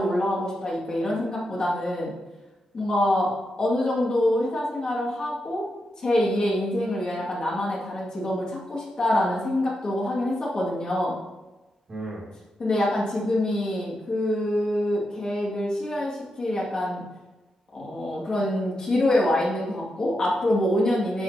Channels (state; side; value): normal; both; correlation 0.86